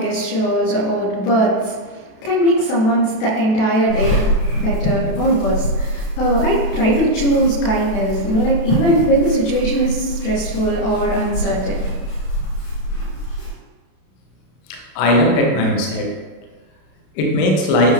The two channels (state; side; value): late; right; 32 ms